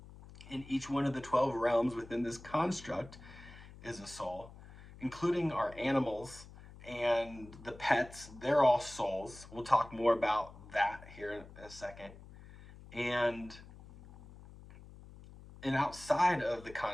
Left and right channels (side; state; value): left; noise; hum, 18 dB below the sound